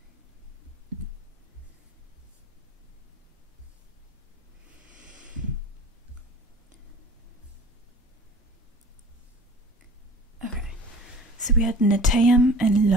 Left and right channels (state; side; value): normal; both; correlation 0.43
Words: So we had Netayam and